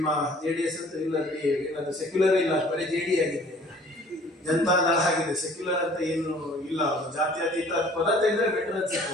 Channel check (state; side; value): normal; both; correlation 0.53